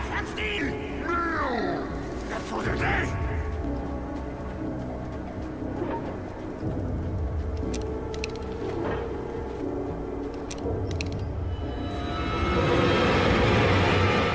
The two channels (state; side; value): identical; both; correlation 1.00